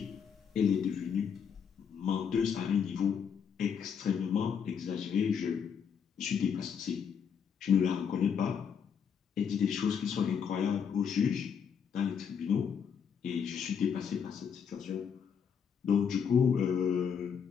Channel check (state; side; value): quieter; right; 7.2 dB